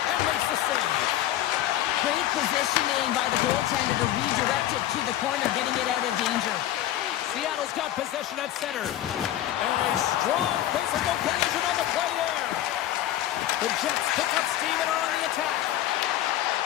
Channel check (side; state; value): right; quieter; 13.1 dB